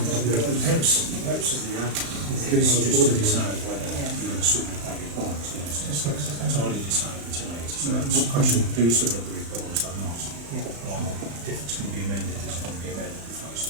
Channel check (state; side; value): late; left; 35 ms